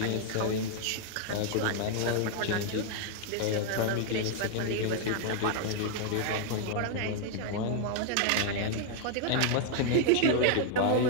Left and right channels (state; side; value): different; both; correlation 0.00